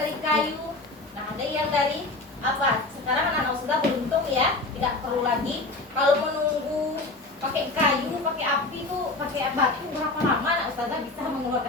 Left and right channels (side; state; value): right; quieter; 3.2 dB